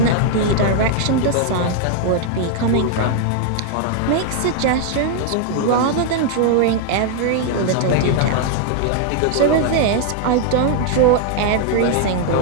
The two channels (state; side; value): different; both; correlation 0.00